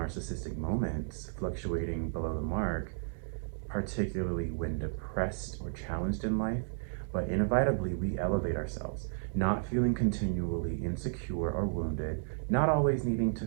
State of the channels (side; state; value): left; silent; digital silence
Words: moments fluctuating below the mark, particularly when depressed or challenged in life, but inevitably we elevate ourselves, not feeling continually insecure or wounded, not always needing to